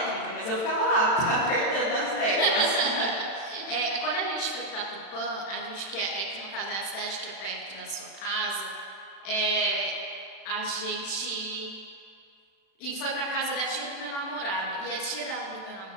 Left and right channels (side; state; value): right; late; 36 ms